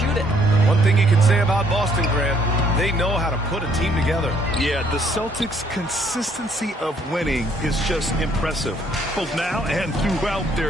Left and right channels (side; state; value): both; normal; correlation 0.65